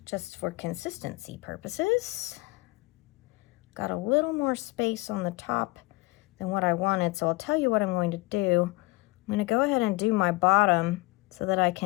just for consistency purposes. Got a little more space on the top than what I wanted, so I'll tell you what I'm going to do. I'm going to go ahead and do my bottom so that I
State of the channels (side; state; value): right; quieter; 22.7 dB